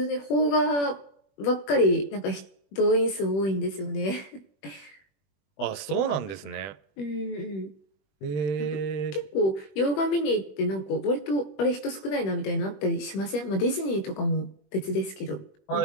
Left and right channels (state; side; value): late; right; 21 ms